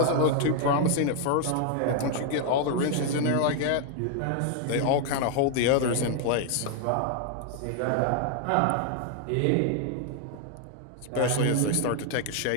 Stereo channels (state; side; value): different; both; correlation 0.00